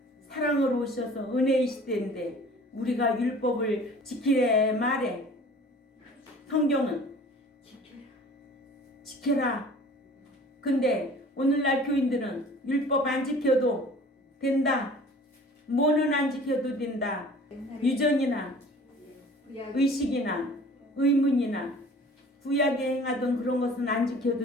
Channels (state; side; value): normal; both; correlation 0.47